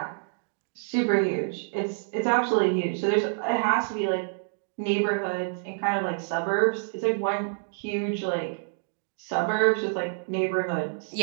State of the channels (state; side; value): silent; left; digital silence